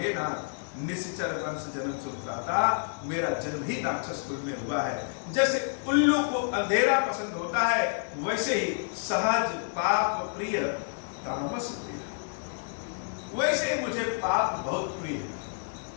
नाथ, निश्चर वंश जन्म सुभ्राता, मेरा जन्म ही राक्षस कुल में हुआ है। जैसे उल्लू को अंधेरा पसंद होता है, वैसे ही सहज पाप प्रिय तामस प्रिय, वैसे ही मुझे पाप बहुत प्रिय।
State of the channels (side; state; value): right; silent; digital silence